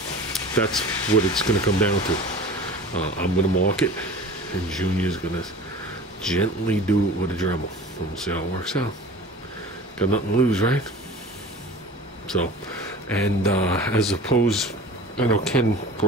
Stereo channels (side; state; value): both; normal; correlation 0.40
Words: That's what it's going to come down to. I'm going to mark it, and Junior's going to gently do it with a Dremel, and we'll see how it works out. Got nothing to lose, right? So, and as opposed, I know Ken